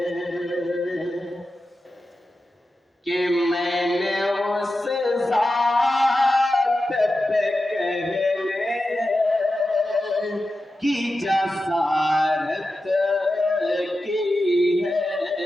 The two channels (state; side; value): normal; both; correlation 0.92